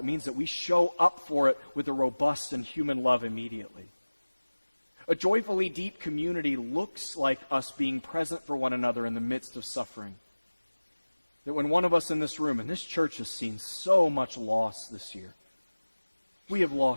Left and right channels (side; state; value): both; inverted; correlation -1.00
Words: means that we show up for it with a robust and human love immediately. A joyfully deep community looks like us being present for one another in the midst of suffering. That when one of us in this room, and this church has seen so much loss this year, we have